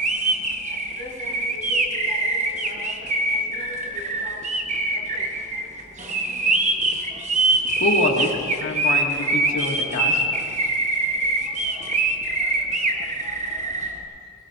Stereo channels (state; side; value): normal; both; correlation 0.20